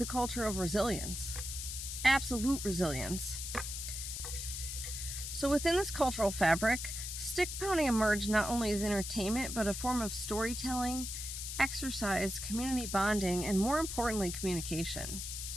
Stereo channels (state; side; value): noise; left; hiss, 5 dB below the sound